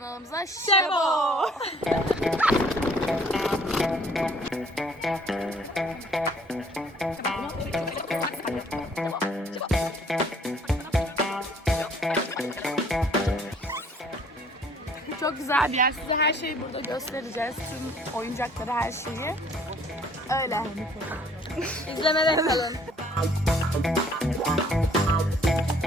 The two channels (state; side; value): normal; both; correlation 0.58